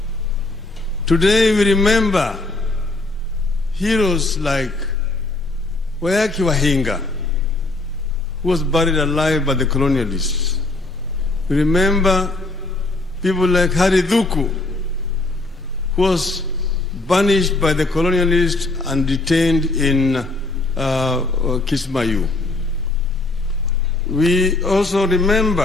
Today we remember heroes like Wayaki Wahinga, who was buried alive by the colonialists. We remember people like Hari Dhuku, who was banished by the colonialists and detained in Kismayu. We also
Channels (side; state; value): right; quieter; 3.0 dB